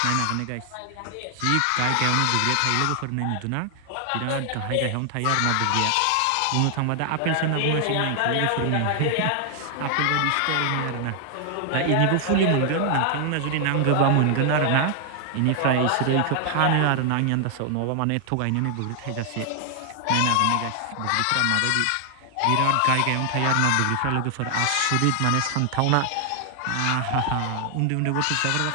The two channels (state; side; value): different; both; correlation 0.00